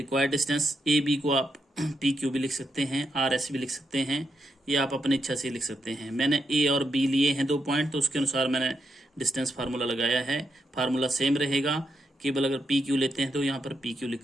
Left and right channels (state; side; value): normal; both; correlation 0.82